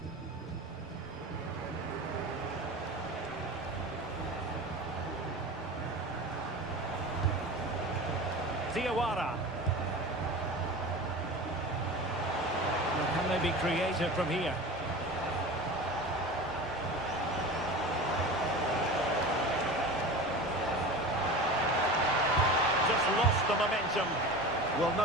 Diawara. Can they be creative from here? Just lost the momentum. Well,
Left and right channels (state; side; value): normal; both; correlation 0.32